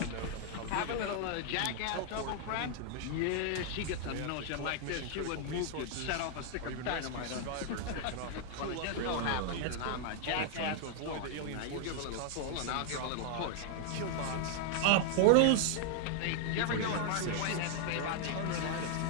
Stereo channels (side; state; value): both; different; correlation 0.00